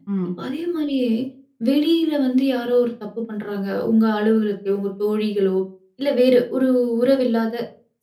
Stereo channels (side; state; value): both; identical; correlation 1.00